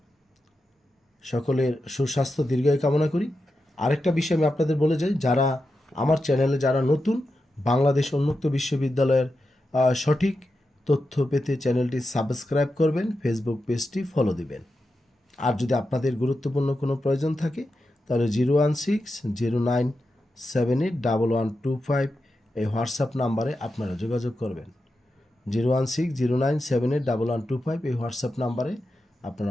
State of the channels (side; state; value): both; normal; correlation 0.89